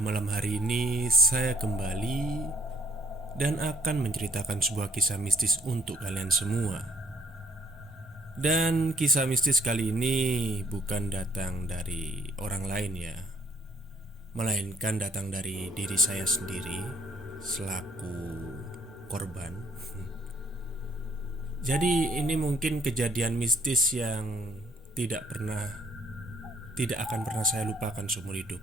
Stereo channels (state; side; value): normal; both; correlation 0.62